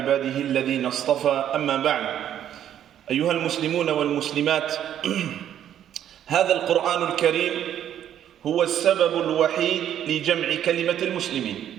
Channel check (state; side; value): quieter; left; 10.4 dB